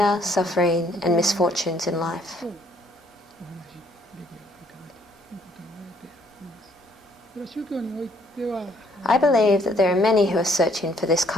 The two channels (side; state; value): both; normal; correlation 0.65